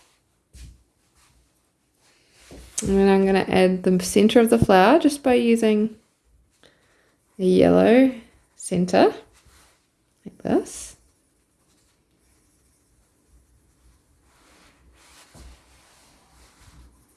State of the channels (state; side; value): identical; both; correlation 1.00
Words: And then I'm going to add the center of the flower just by using a yellow center, like this.